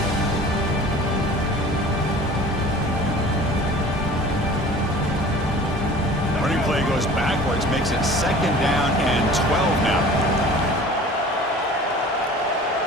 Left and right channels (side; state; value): both; normal; correlation 0.44